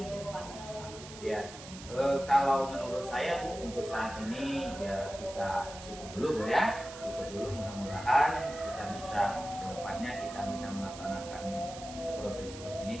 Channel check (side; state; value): right; noise; hiss, 14 dB below the sound